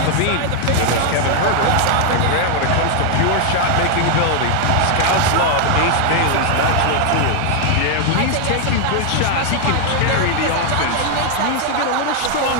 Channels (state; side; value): different; both; correlation 0.00